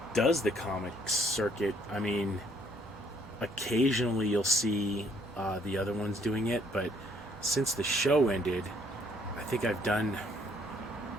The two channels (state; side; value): normal; both; correlation 0.66